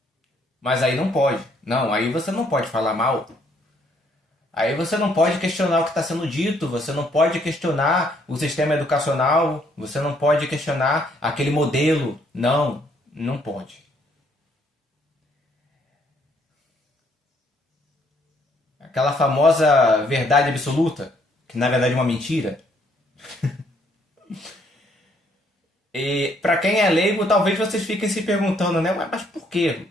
Mas aí não pode. Não, aí você não pode falar mal. Aí você não pode questionar o que está sendo dito, você não pode questionar o sistema educacional, você não pode questionar aquele modelo. Não, não pode. Aquela famosa verdade absoluta, que na verdade é uma mentira. E para quem é leigo, talvez vocês fiquem se perguntando, né? Mas por quê?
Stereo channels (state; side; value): normal; both; correlation 0.68